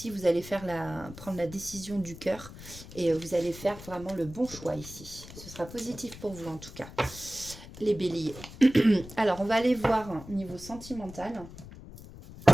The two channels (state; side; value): noise; left; rumble, 15 dB below the sound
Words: vous allez prendre la décision du cœur. Et vous allez faire vraiment le bon choix ici. Ce sera positif pour vous en tout cas, les béliers. Alors, on va aller voir niveau sentimental.